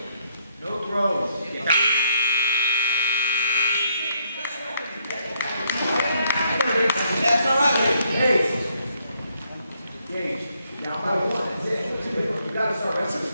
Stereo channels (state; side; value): inverted; both; correlation -0.74